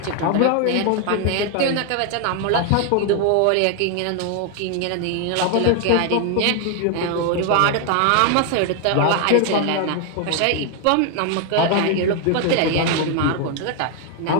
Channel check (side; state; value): both; different; correlation 0.00